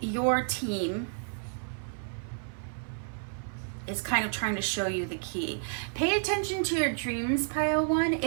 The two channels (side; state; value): left; silent; 57 dB below the other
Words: your team is kind of trying to show you the key. Pay attention to your dreams, pile one.